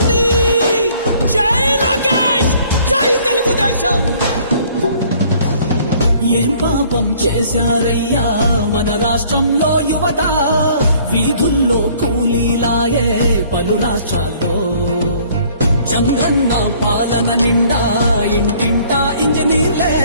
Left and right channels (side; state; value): both; inverted; correlation -0.57